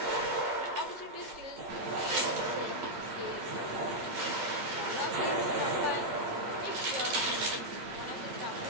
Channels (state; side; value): late; left; 8.4 ms